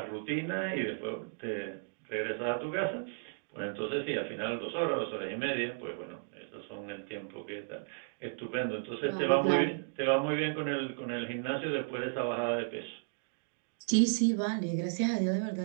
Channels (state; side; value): silent; left; digital silence